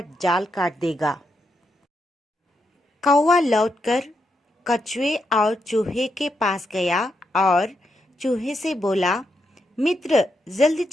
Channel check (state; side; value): normal; both; correlation 0.82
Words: जाल काट देगा। कौवा लौटकर कछुए और चूहे के पास गया और चूहे से बोला, मित्र जल्दी